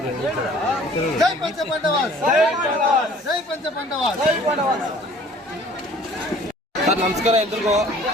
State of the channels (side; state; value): both; normal; correlation 0.52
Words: ಜೈ ಪಂಚಪಾಂಡವಾಸ್, ಜೈ ಪಂಚಪಾಂಡವಾಸ್. ಸರ್ ನಮಸ್ಕಾರ ಎಲ್ರಿಗೂ.